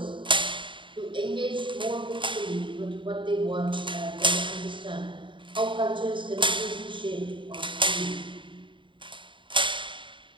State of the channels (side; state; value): left; late; 0.24 ms